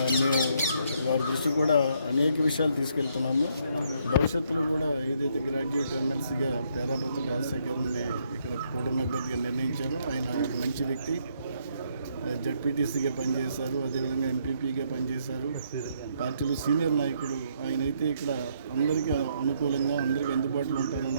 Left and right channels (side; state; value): both; inverted; correlation -0.72